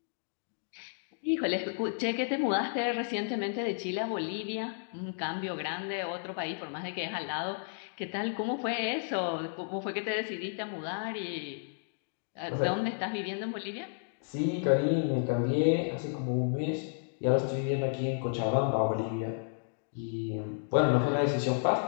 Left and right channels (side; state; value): right; silent; digital silence